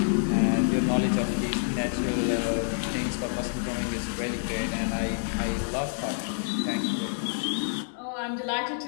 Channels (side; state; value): right; silent; 60 dB below the other